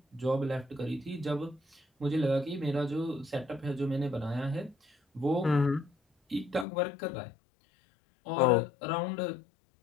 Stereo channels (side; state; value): right; drops out; at 6.7 s